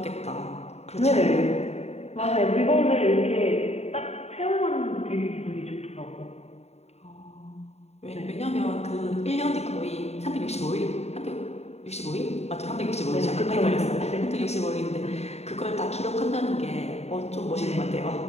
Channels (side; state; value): right; late; 0.31 ms